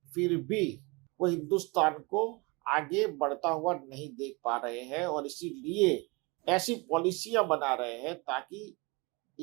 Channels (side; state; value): left; quieter; 27.0 dB